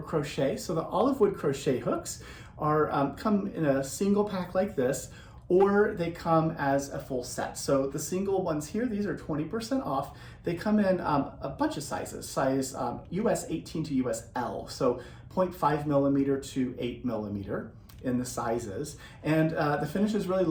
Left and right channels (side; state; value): both; identical; correlation 1.00